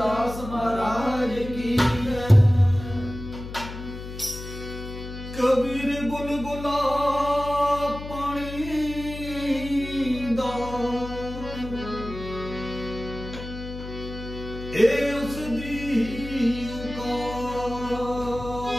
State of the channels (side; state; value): left; noise; hum, 10 dB below the sound